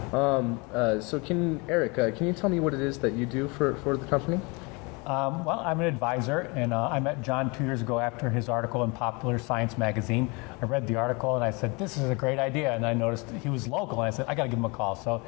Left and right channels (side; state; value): right; quieter; 28.5 dB